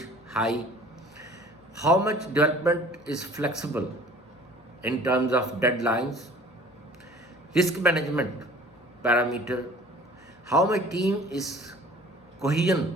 high, how much development is flexible in terms of deadlines, risk management parameter, how my team is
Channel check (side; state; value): both; normal; correlation 0.48